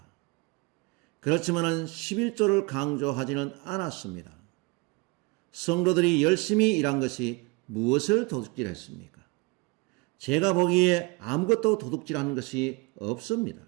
그렇지만 11조를 강조하지는 않았습니다. 성도들이 열심히 일한 것이 무엇을 도둑질했습니까? 제가 보기에 아무것도 도둑질한 것이 없습니다.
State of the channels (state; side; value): quieter; left; 27.0 dB